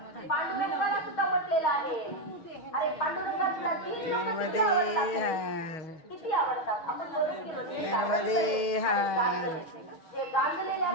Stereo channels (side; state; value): right; late; 6.3 ms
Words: पांडुरंगाला सुद्धा म्हटलेलं आहे. अरे पांडुरंगाला नर्मदे किती आवडतात. आपण बरं केलं नर्मदे जे गांजलेल्या